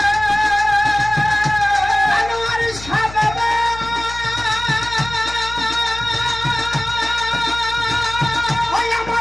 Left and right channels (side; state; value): left; noise; hum, 14 dB below the sound